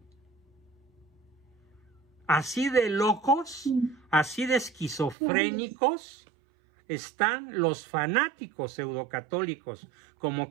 Así de locos, así de esquizofrénicos están los fanáticos pseudocatólicos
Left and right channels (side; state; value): left; drops out; at 5.2 s